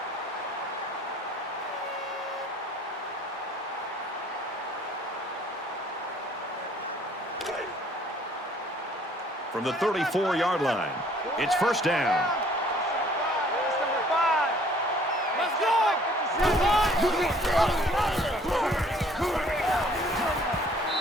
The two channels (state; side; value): normal; both; correlation 0.57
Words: From the 34-yard line, it's first down. Let's go!